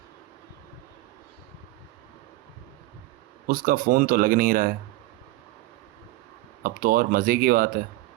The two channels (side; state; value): left; quieter; 18.2 dB